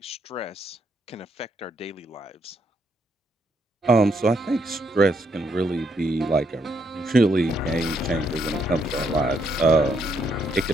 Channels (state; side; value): normal; both; correlation 0.74